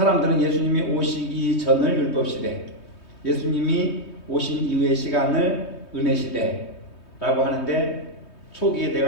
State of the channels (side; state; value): right; late; 3.2 ms